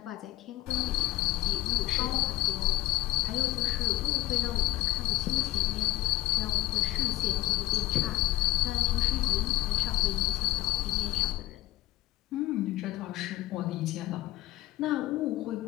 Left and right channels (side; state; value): right; quieter; 16.8 dB